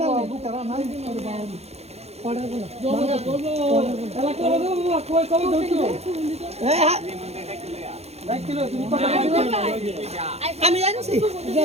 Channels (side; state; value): left; late; 0.31 ms